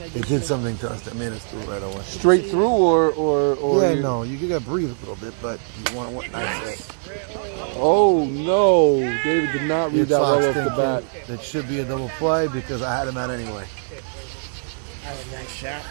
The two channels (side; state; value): left; silent; digital silence